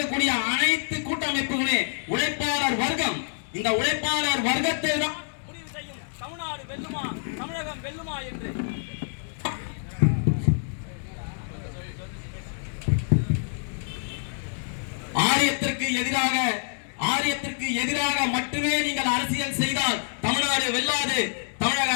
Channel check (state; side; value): silent; right; digital silence